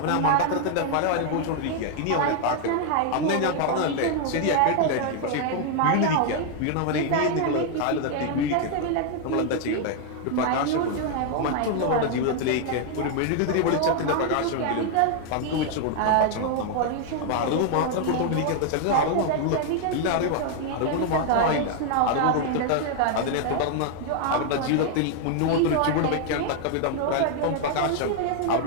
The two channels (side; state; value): both; different; correlation 0.00